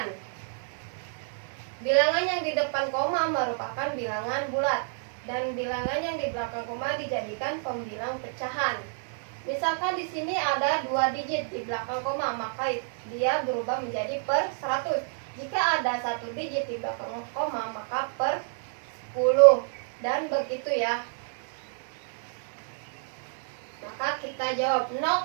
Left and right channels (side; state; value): left; silent; digital silence